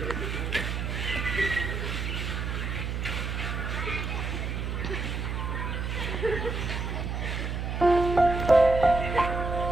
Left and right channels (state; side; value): noise; right; hum, 3 dB below the sound